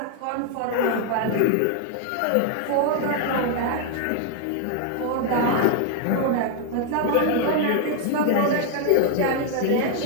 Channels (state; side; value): different; both; correlation 0.00